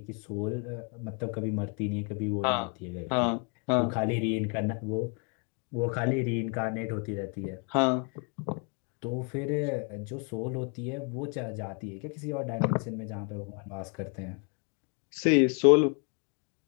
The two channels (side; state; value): right; quieter; 37.0 dB